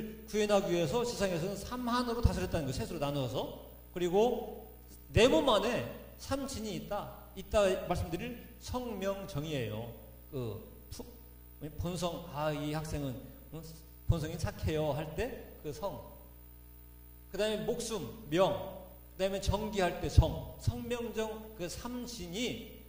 구현하기 위해서 세상에서는 삼한으로 다스렸다는 거, 셋으로 나누어서. 그리고 네 몸 안에 삼진이 있다. 이따 말씀드릴 성명정의예요. 본성, 이 학생은 본성이 착해요 할 때 그 성. 그 다음에 목숨, 명. 그 다음에 정기할 때 정. 성명정 그 삼신이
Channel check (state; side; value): identical; both; correlation 1.00